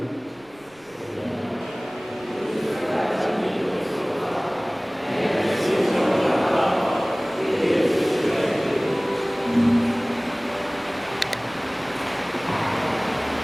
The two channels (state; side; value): noise; right; rumble, 30 dB below the sound